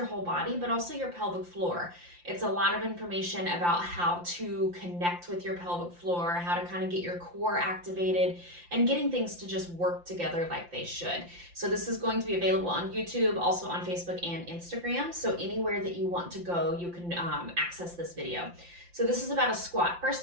whole body, but also your pelvic floor. It's a lot of information about how to connect with your pelvic floor, how to kind of get your core activated, and getting things to just work together like they should. So this is going to be available on YouTube, also on Facebook and Instagram. So anywhere that you want to go, you can access this video. So this is about a squat.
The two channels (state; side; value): late; left; 5.8 ms